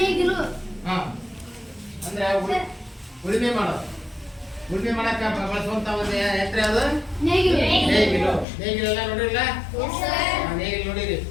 ನೇಗಿಲು. ಅಂದ್ರೆ ಉಳುಮೆ ಮಾಡಕ್ಕ ಬಳಸುವಂತ ಒಂದು ಯಂತ್ರ ಅದು ನೇಗಿಲು ಎಲ್ಲ ನೋಡಿರಲ್ಲ? ನೇಗಿಲು ನೋಡಿರಿ,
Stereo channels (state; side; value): drops out; right; at 8.5 s